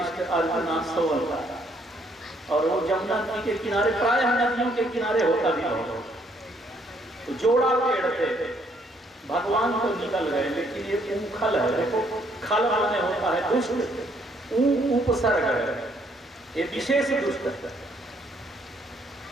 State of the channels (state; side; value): normal; both; correlation 0.68